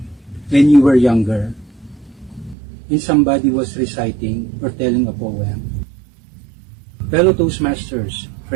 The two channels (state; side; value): drops out; left; at 2.6 s